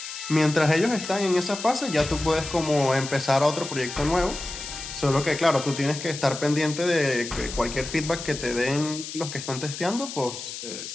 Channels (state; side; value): noise; left; hiss, 9 dB below the sound